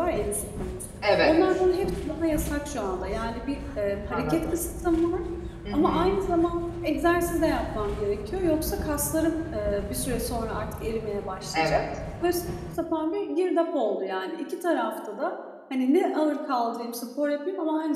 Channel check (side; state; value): both; identical; correlation 1.00